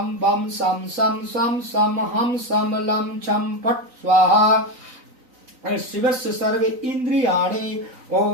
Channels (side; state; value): left; late; 3.9 ms